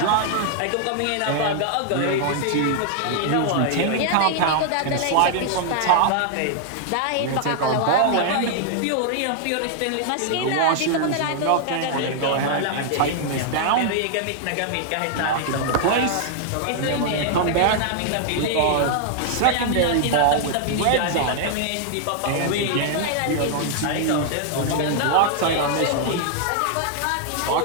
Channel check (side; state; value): both; different; correlation 0.00